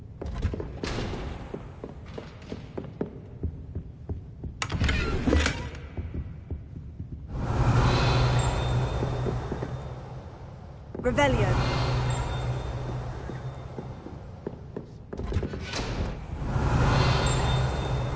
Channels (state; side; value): identical; both; correlation 1.00